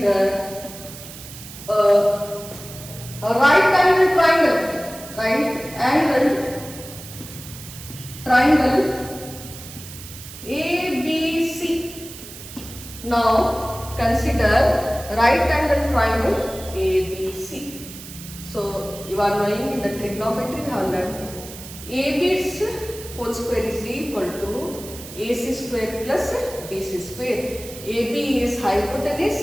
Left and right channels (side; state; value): right; noise; hiss, 14 dB below the sound